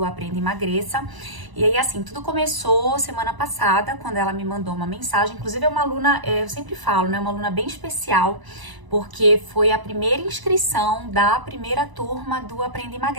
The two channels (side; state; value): left; late; 1.0 ms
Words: Aprenda e Emagreça. E aí, assim, tudo começou semana passada, quando ela me mandou uma mensagem. Inclusive, é uma aluna, eu sempre falo, né? Uma aluna bem especial, porque foi a primeira inscrição da primeira turma do Aprenda e